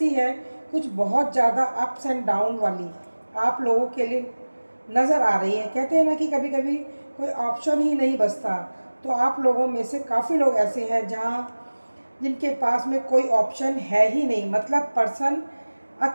है कुछ बहुत ज़्यादा अप्स एंड डाउन वाली आप लोगों के लिए नज़र आ रही है। कहते हैं ना कि कभी कभी कोई ऑप्शन ही नहीं बचता, तो आप लोगों में से काफ़ी लोग ऐसे हैं जहाँ जिनके पास में कोई ऑप्शन है ही नहीं, मतलब पर्सन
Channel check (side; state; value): both; inverted; correlation -1.00